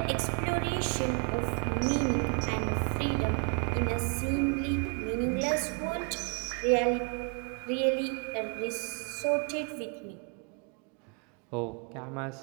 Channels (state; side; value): quieter; left; 38.0 dB